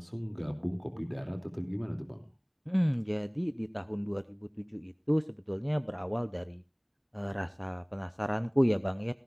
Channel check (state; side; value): identical; both; correlation 1.00